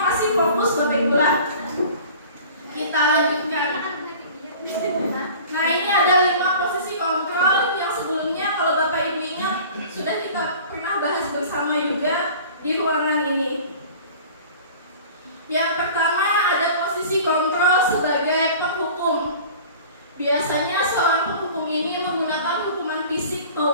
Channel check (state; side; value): inverted; both; correlation -0.43